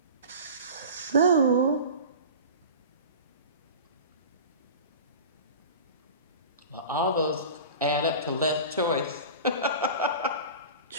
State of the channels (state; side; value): inverted; both; correlation -0.35